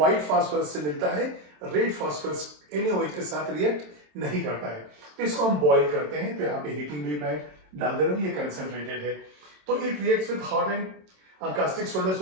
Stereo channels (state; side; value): late; left; 27 ms